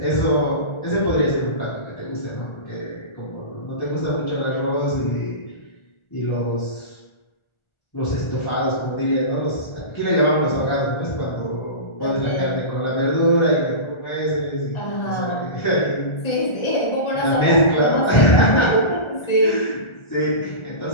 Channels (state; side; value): late; right; 1.4 ms